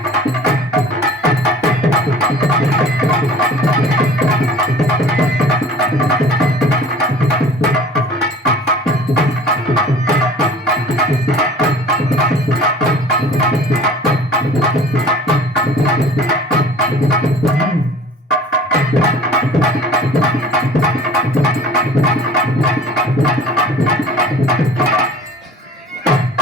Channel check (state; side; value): normal; both; correlation 0.46